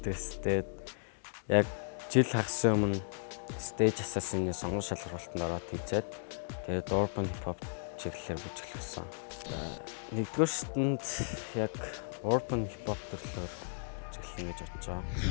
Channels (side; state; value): right; silent; digital silence